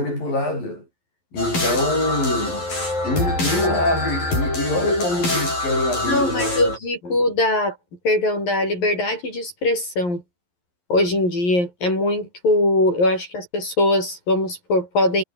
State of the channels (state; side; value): late; right; 11 ms